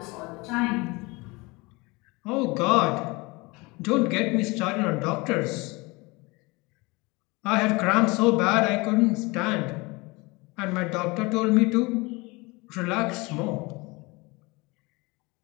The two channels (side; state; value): right; quieter; 25.0 dB